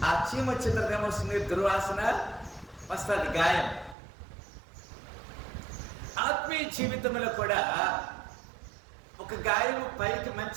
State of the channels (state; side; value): drops out; left; at 4.0 s